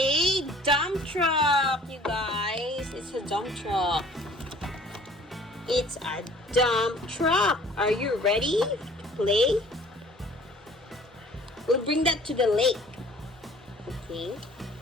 dump truck, you guys. It's a dump truck. It's a dump truck. Are you ready to play? We'll bring that to the lake. Okay.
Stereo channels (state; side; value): normal; both; correlation 0.51